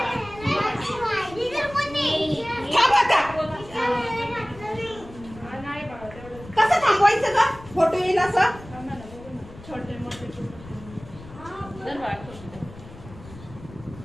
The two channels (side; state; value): left; noise; rumble, 17 dB below the sound